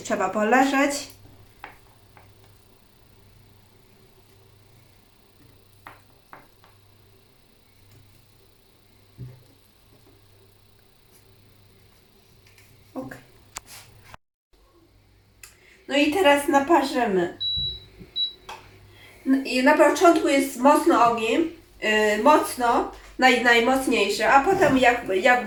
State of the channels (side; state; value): both; identical; correlation 1.00